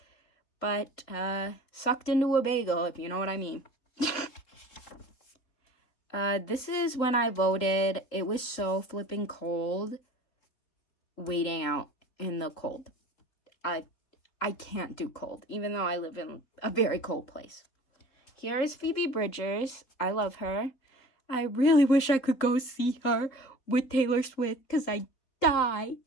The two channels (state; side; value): late; right; 3.7 ms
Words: But sucked into a bagel, if you know what I mean. This is when I voted. It was so flipping cold waiting out in the cold. I can't do cold, even though I live in a very cold place. Here is Phoebe Bridgers. I love her. I really wish I could go see her with Taylor Swift because I die.